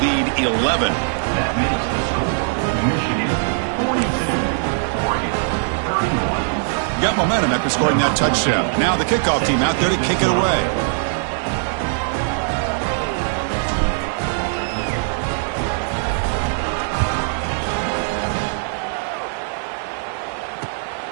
11. Got momentum after scoring that touchdown. Now the kickoff team out there to kick it away.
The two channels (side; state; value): left; silent; digital silence